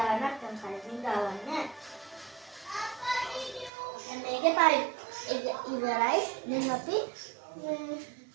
නැත්නම් කලින් දාන්න. දැන් මේකේ පයිප් එක ඉවරයි. දැන් අපි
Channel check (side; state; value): left; drops out; at 3.7 s